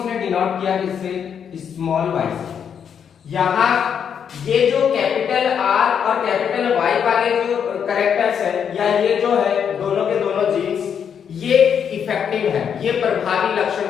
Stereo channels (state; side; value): quieter; right; 7.8 dB